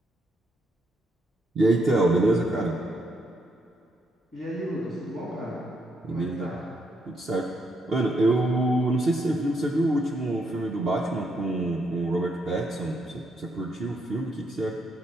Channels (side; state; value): both; normal; correlation 0.76